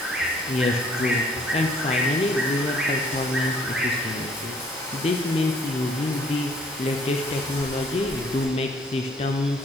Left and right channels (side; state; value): both; normal; correlation 0.61